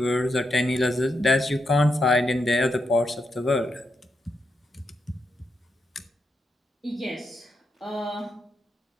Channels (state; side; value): normal; both; correlation 0.83